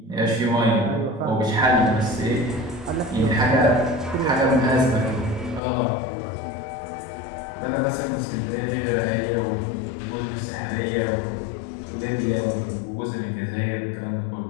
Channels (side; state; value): right; drops out; at 5.6 s